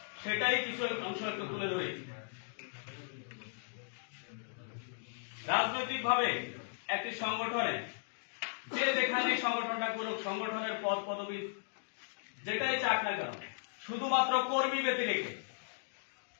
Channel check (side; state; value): right; silent; digital silence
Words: সেটাই কিছু অংশ একটু তুলে ধরেছি। রাজনৈতিক ভাবে একটি সংগঠনে যে যেখানে সংগঠনটা করুক, সংগঠনের পদ পদবি যেটাই চাক না কেন, শুধুমাত্র কর্মী ব্যতি রেখে